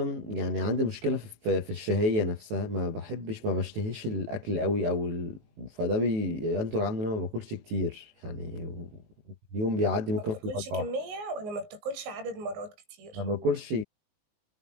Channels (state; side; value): late; left; 19 ms